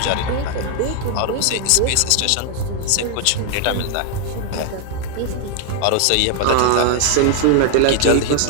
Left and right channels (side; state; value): both; different; correlation 0.00